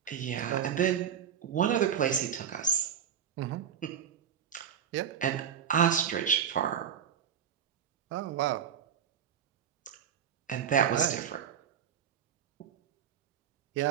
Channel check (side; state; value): left; quieter; 8.4 dB